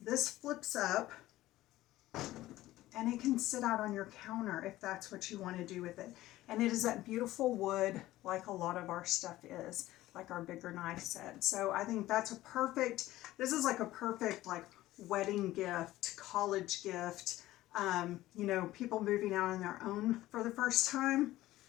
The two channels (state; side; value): quieter; right; 16.0 dB